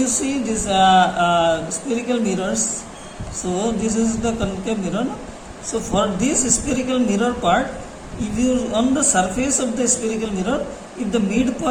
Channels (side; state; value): both; identical; correlation 1.00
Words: see this spherical mirrors. So this is the concave mirror. So for this spherical mirror part, if you on the surface of the spherical mirror, if the